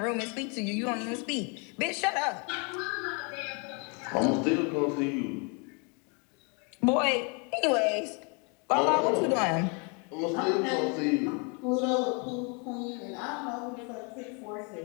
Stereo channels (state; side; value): quieter; right; 34.1 dB